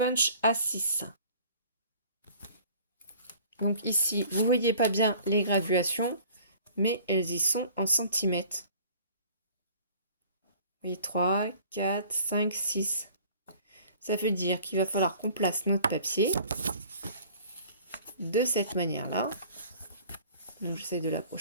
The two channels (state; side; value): inverted; both; correlation -0.50